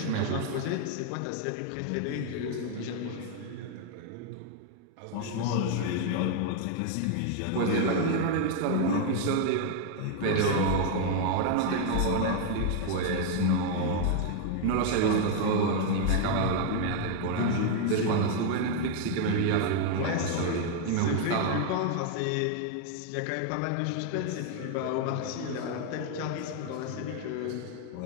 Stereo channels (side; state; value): both; different; correlation 0.00